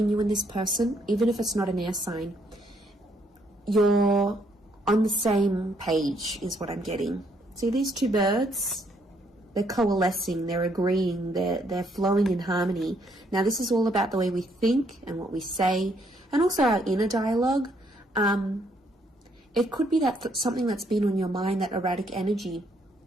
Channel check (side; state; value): both; normal; correlation 0.70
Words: you and this person, even if it's not an air sign. You're on the same page, is what I'm getting. See these two birds? They're coalescing, they're agreeing, they're flowing in harmony. Now, this is all about the way we think and what we say, and also our inner dialogue. It could be that something that's been on your mind, that erratic energy.